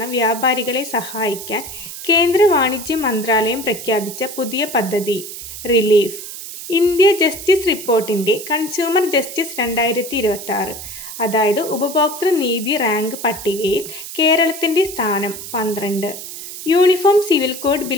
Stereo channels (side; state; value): right; noise; hiss, 10 dB below the sound